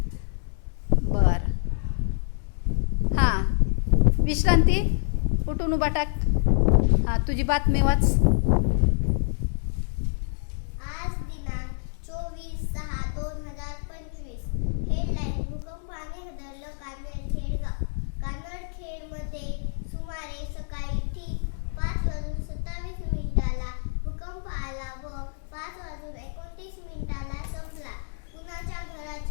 बर. हां, विश्रांती, उठून उभा टाक. हां, तुझी बातमी वाच. आज दिनांक 24/6/2025. हेडलाईन: भूकंपाने हादरलं कानडखेड गाव. कानडखेडमध्ये सुमारे सकाळी ठीक 5:27 भूकंप आला व 5:29 संपला. कुणाच्या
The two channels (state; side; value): silent; right; digital silence